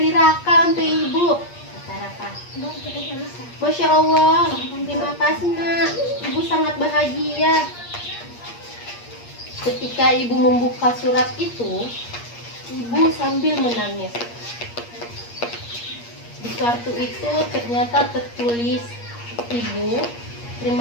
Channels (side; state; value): right; late; 8.5 ms